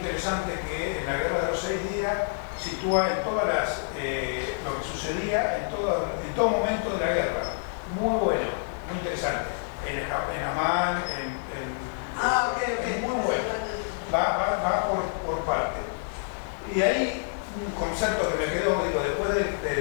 que en la Guerra de los 6 días sitúa en todas lo que sucedía en todo momento de la guerra. Muy bueno, muy interesante. En Amán, muy bueno. Va por parte. Y hay un concepto que me quedó, digo, después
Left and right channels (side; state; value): right; silent; 60 dB below the other